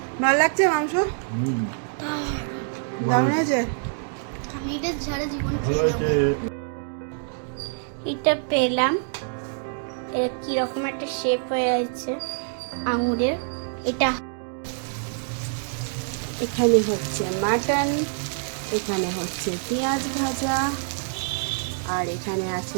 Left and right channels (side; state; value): left; silent; digital silence